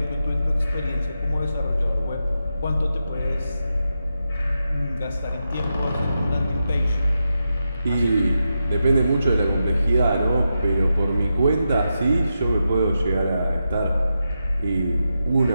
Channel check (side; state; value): both; inverted; correlation -0.87